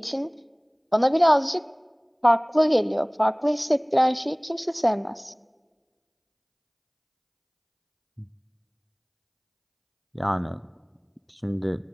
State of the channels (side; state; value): both; identical; correlation 1.00